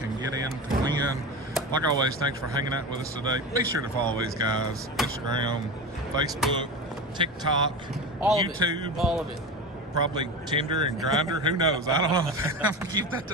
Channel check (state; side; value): normal; both; correlation 0.25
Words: get in to win. Like always, thanks for hanging out with us today. Be sure to follow these guys: Instagram, Facebook, TikTok, All YouTube. of it. All of it. Probably Tinder and Grindr. Who knows? I don't know. I'm gonna keep that